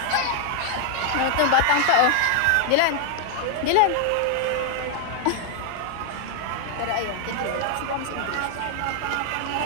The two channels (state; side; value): different; both; correlation 0.00